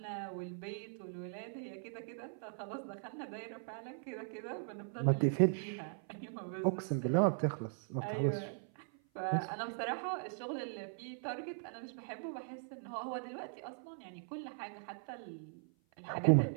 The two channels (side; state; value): left; silent; 51 dB below the other